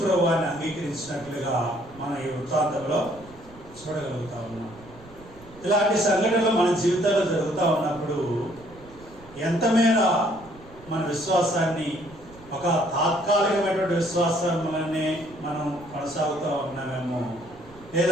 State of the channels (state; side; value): noise; right; rumble, 22 dB below the sound